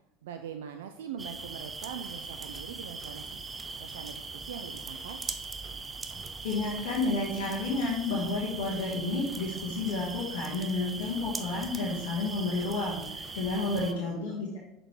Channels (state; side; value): normal; both; correlation 0.32